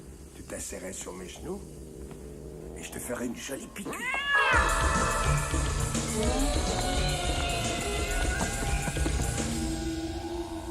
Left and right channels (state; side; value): identical; both; correlation 1.00